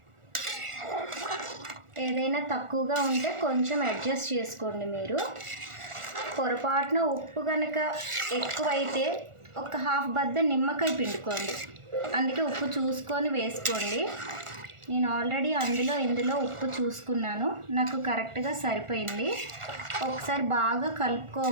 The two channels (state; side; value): late; left; 1.4 ms